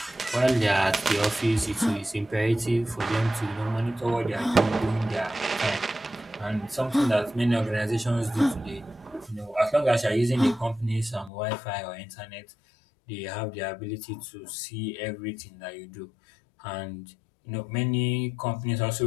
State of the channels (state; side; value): drops out; right; at 11.3 s